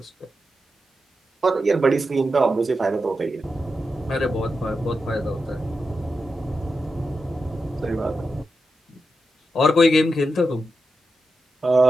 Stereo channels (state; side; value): normal; both; correlation 0.88